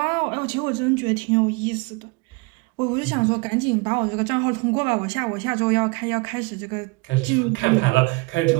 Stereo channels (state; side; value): quieter; left; 27.3 dB